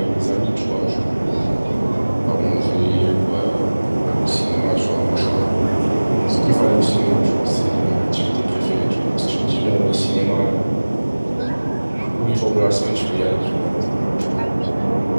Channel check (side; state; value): both; inverted; correlation -1.00